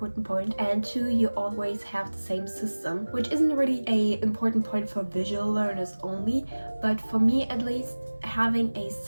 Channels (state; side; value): inverted; both; correlation -1.00